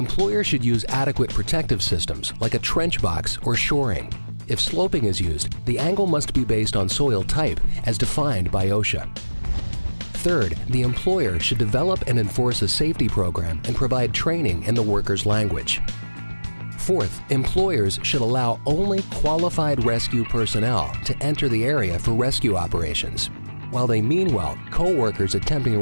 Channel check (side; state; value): both; inverted; correlation -1.00